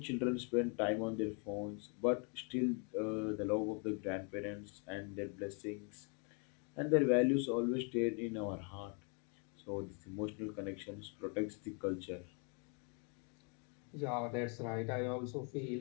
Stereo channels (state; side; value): quieter; right; 37.8 dB